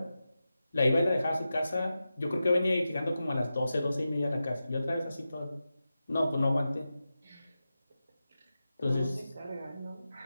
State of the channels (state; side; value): inverted; both; correlation -0.92